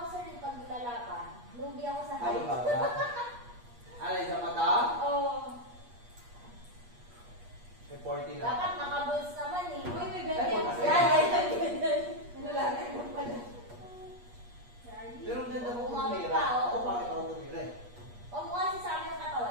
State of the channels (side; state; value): left; late; 8.4 ms